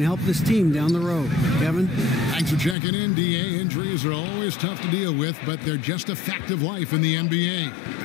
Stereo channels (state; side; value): drops out; right; at 2.8 s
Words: help this team down the road. Kevin? Thanks for checking in, DA. Injuries are always tough to deal with, but they're just a fact of life in the NBA.